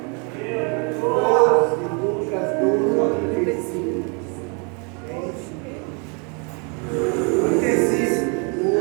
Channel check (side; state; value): left; quieter; 34.9 dB